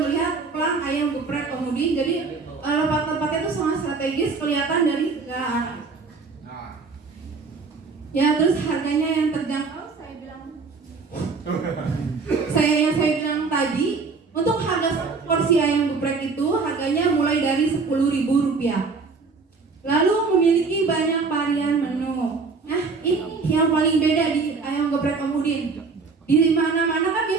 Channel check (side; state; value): left; quieter; 4.5 dB